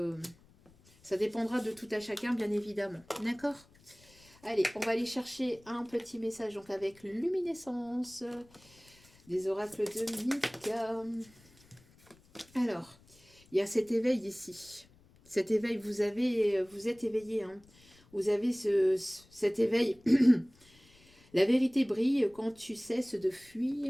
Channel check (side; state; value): left; noise; rumble, 28 dB below the sound